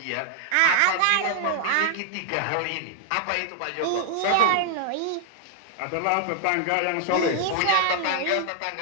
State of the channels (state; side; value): different; both; correlation -0.01